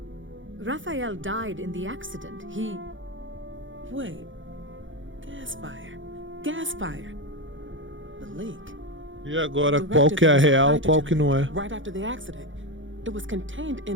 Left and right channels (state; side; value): late; left; 0.56 ms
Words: Raphael died in the accident. He... Wait. Gas fire. Gas fire. The leak. E agora, qual que é a real, qual que não é? Right after the accident. It was contained